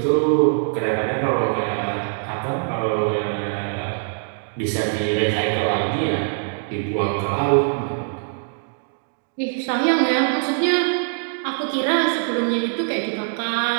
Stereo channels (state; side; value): silent; left; digital silence